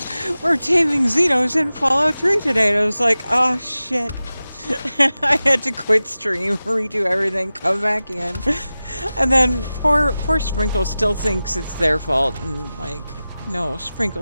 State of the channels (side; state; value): both; inverted; correlation -0.95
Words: we're taming Xenos in Fallout 3 today. And I was like, oh shit. I had to quit stream, redo everything, come back in. And then poor Sprinkle still thinks it's their fault. And like, no,